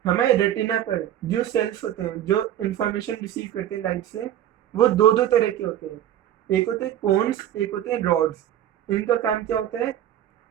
हमें रेटिना पर जो सेल्स होते हैं जो इंफॉर्मेशन रिसीव करते हैं लाइट से, वो दो दो तरह के होते हैं। एक होते हैं कोन्स, एक होते हैं रॉड्स। इनका काम क्या होता है?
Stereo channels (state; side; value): quieter; left; 11.6 dB